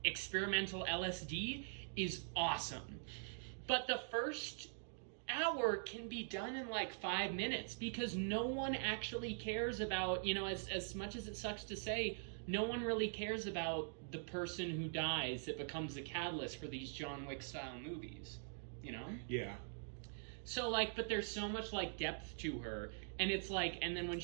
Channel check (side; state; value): left; silent; digital silence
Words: experimental LSD is awesome. But the first hour can be done in, like, 5 minutes because no one actually cares about, you know, as much as it sucks to say, no one really cares about the person who dies that becomes the catalyst for these John Wick-style movies, you know? Yeah. So, like, but there's so much, like, depth to her, and it's like, and then when